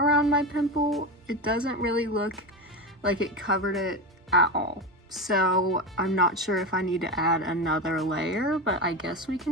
my pimple. It doesn't really look like it covered it at all. So I'm not sure if I need to add another layer, but I guess we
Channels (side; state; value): both; normal; correlation 0.20